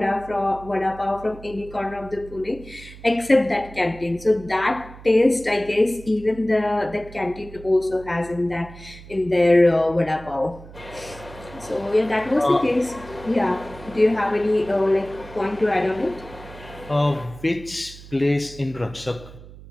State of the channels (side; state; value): right; noise; hum, 18 dB below the sound